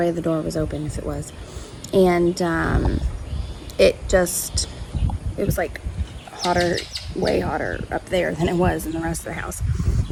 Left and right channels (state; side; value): identical; both; correlation 1.00